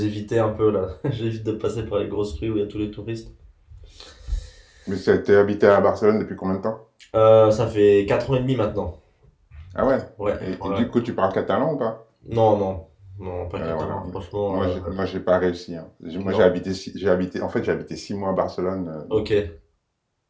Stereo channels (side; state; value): both; identical; correlation 1.00